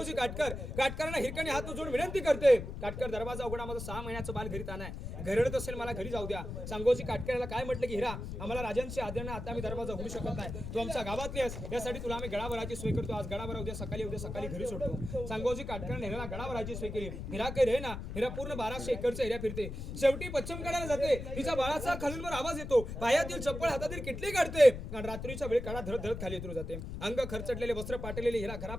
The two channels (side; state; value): left; noise; rumble, 7 dB below the sound